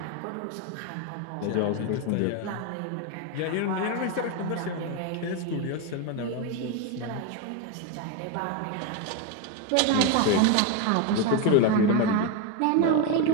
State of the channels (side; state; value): both; different; correlation 0.03